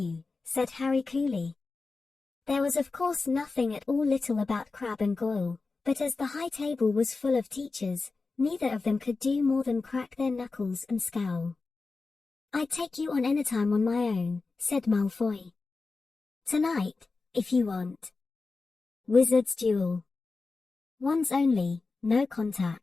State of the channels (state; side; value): quieter; right; 4.0 dB